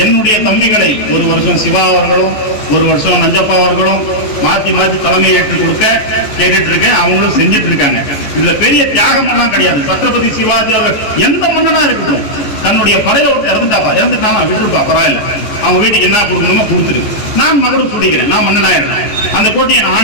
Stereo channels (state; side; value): late; right; 14 ms